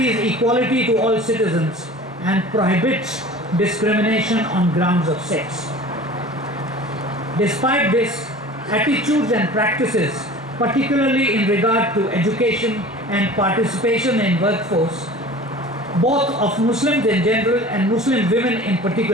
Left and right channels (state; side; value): normal; both; correlation 0.41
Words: equality to all citizens and prohibits discrimination on grounds of sex. Despite this, attitudes and practices, particularly in regard to education and participation in workforce, both of Muslims in general and Muslim women in